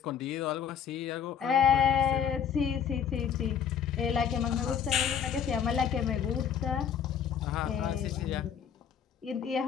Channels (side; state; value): right; quieter; 8.0 dB